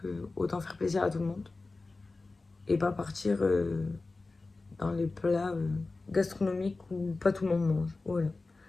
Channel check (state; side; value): quieter; right; 3.5 dB